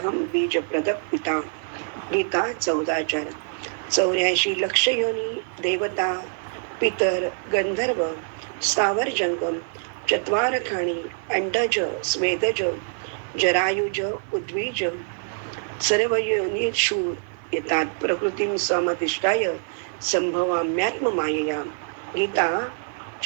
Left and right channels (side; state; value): left; silent; 55 dB below the other